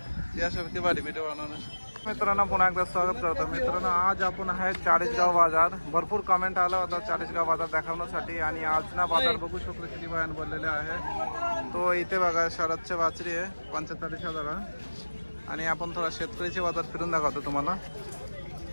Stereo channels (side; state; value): both; inverted; correlation -1.00